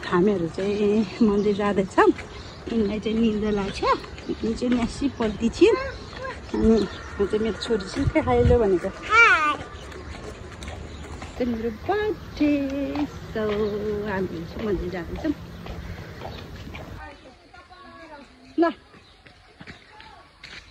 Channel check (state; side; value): identical; both; correlation 1.00